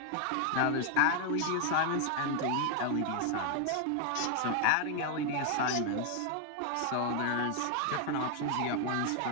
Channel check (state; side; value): different; both; correlation 0.00